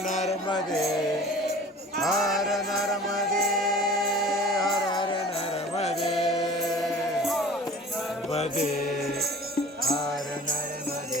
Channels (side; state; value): both; normal; correlation 0.44